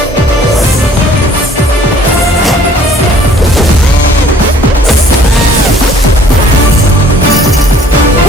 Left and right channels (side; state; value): both; normal; correlation 0.56